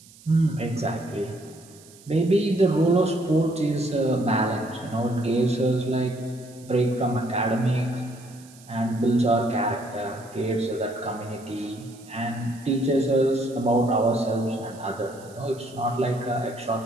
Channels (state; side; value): noise; right; hiss, 23 dB below the sound